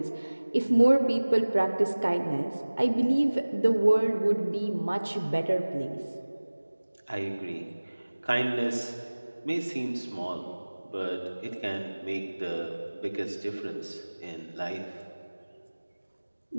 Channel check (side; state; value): both; inverted; correlation -1.00